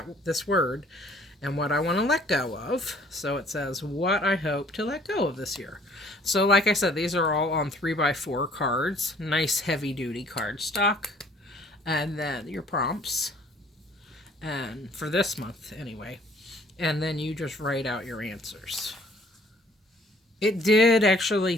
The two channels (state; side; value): normal; both; correlation 0.57